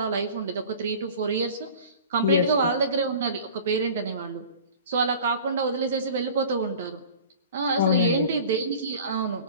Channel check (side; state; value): both; inverted; correlation -0.42